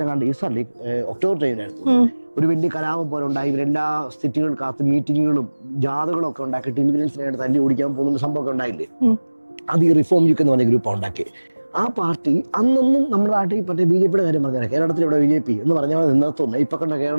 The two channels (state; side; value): inverted; both; correlation -1.00